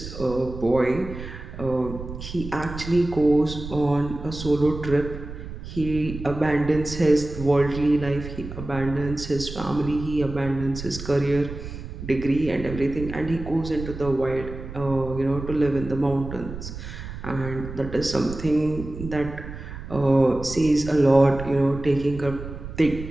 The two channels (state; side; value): noise; right; rumble, 10 dB below the sound